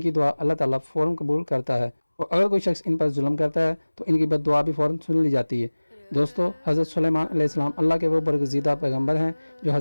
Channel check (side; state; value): both; inverted; correlation -1.00